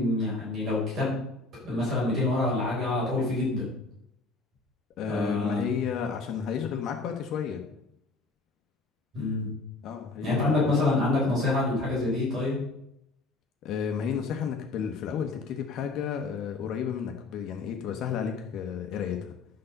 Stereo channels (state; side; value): quieter; right; 3.4 dB